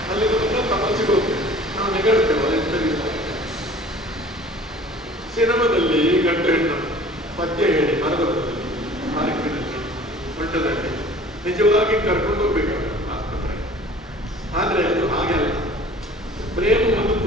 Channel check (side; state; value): both; normal; correlation 0.47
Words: ಅಲ್ಲಿ ಬಂದ ತಪಸ್ಸಿಗೆ ಹೋಗ್ತೇವೆ ನಾವು ನೆಗಡ್ತೇವಲ್ಲ ಎಂತ. ಸಿನಿಮಾದಲ್ಲಿ ಗಂಡು ಹೆಣ್ಣು ಪದ್ಯ ಹೇಳಿ ಮರದಲ್ಲಿ ಪಾರ್ಕಿನಲ್ಲಿ ಮಠದಲ್ಲಿ ನಿಜವಾಗಿ ಕರ್ಕೊಂಡು ಹೋಗ್ಬೇಕಾಗ ಆಸ್ಪತ್ರೆ. ಆದರೆ ಅದು ಹಾಗೆಲ್ಲ ಪ್ರೇಮವನ್ನು